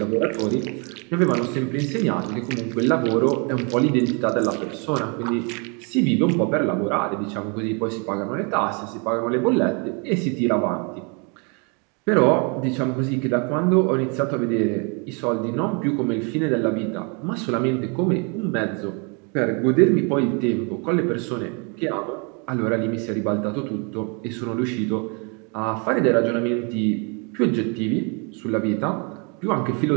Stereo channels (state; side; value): quieter; left; 34.4 dB